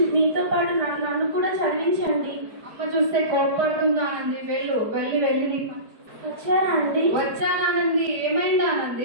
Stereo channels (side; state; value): left; late; 4.7 ms